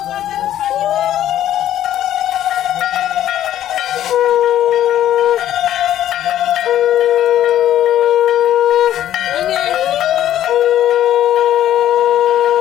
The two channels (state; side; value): quieter; right; 11.9 dB